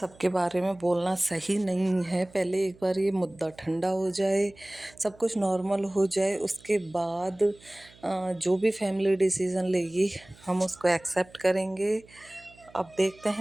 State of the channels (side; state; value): right; noise; hum, 26 dB below the sound